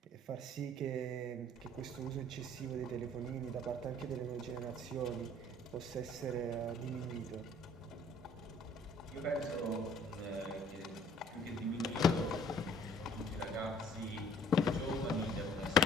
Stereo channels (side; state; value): both; normal; correlation 0.56